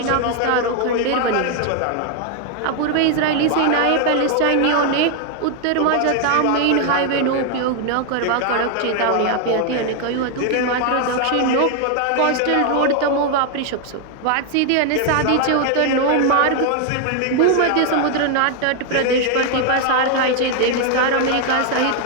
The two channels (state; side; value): different; both; correlation 0.00